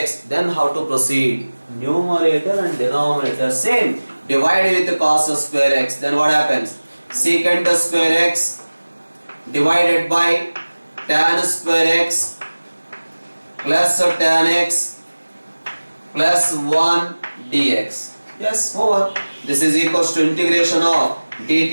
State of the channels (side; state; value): both; inverted; correlation -1.00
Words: Then how to proceed? Numerator and denominator same. Divide with cos square x. Then what happens? Secant square x divided by tan square x plus tan x plus 1 dx. Yes, over. This is equals to integration of